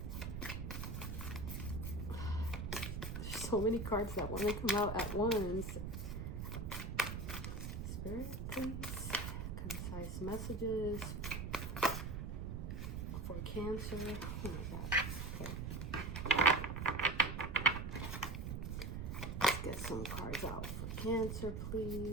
There's so many cards that want to come out at once. Spirit, please. Concise messages for Cancer. Oh my god. Okay. Let's get some cards out for Cancer,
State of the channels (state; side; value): noise; right; rumble, 4 dB below the sound